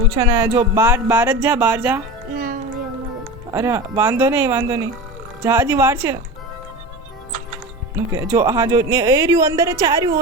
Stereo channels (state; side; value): normal; both; correlation 0.28